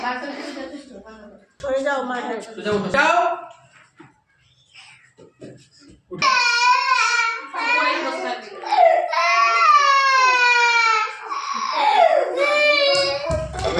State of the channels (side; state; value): both; identical; correlation 1.00